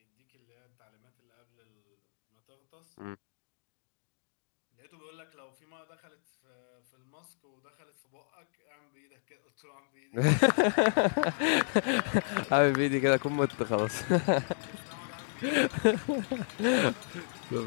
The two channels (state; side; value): silent; right; digital silence